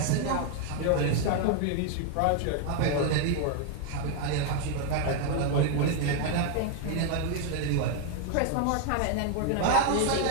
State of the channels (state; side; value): different; both; correlation 0.00